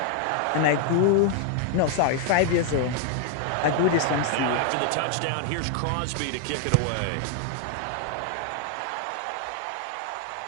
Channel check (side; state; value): both; different; correlation 0.00